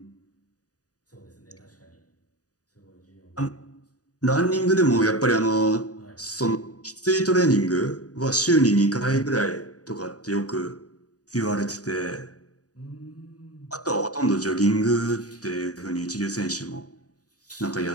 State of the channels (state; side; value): late; right; 0.67 ms